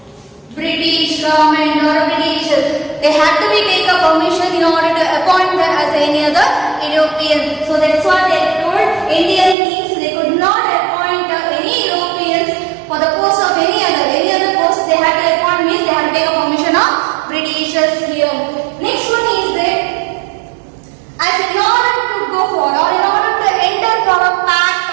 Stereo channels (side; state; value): left; drops out; at 9.6 s